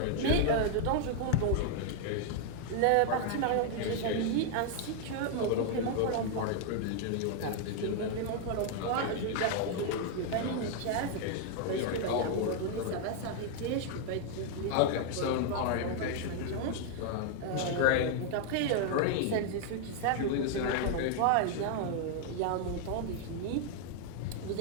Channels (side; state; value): both; different; correlation 0.00